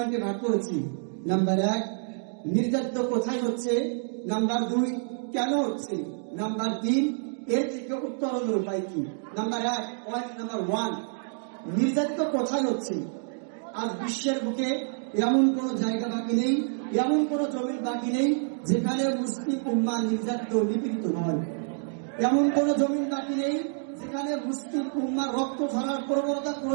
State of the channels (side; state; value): left; silent; digital silence